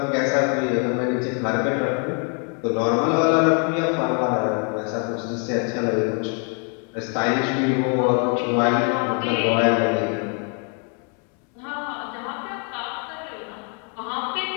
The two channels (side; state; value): right; quieter; 39.7 dB